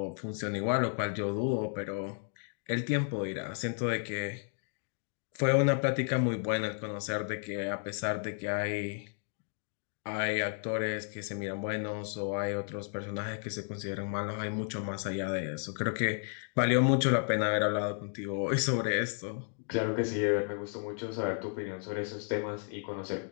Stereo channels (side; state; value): right; silent; 56 dB below the other